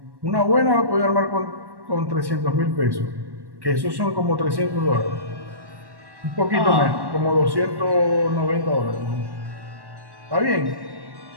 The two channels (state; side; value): late; left; 1.1 ms